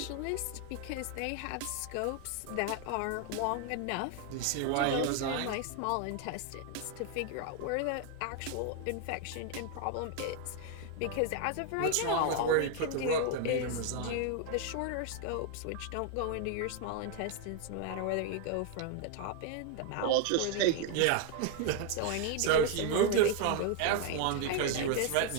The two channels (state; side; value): different; both; correlation 0.00